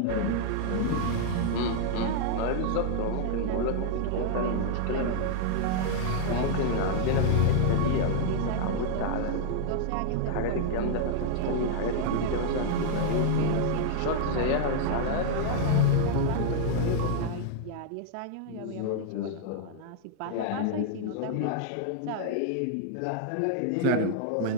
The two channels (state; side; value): different; both; correlation 0.00